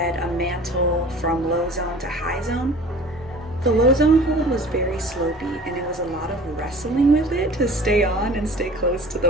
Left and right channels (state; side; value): normal; both; correlation 0.44